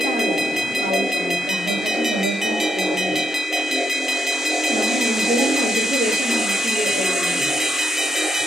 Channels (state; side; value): normal; both; correlation 0.78